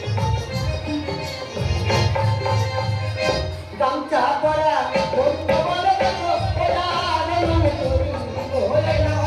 গামছা পরা বন্ধ বলে দেখো ওরা নমন করি ওরে না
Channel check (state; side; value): identical; both; correlation 1.00